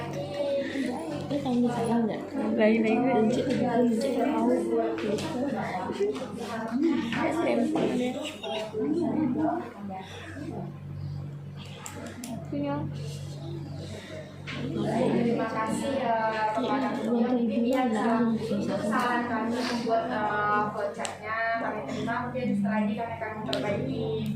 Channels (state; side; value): identical; both; correlation 1.00